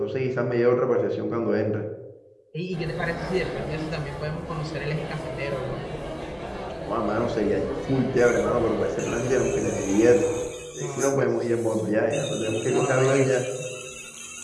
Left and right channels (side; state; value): both; identical; correlation 1.00